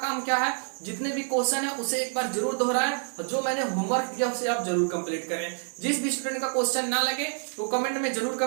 काम क्या है, जितने भी क्वेश्चन है उसे एक बार जरूर दोहराएं और जो मैंने होमवर्क दिया उसे आप जरूर कंप्लीट करें। जिस भी स्टूडेंट का क्वेश्चन ना लगे वो कमेंट में जरूर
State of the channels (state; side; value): silent; left; digital silence